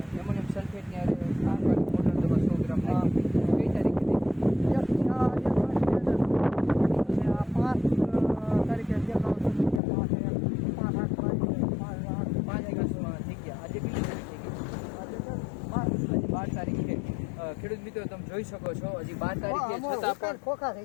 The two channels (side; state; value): right; drops out; at 9.8 s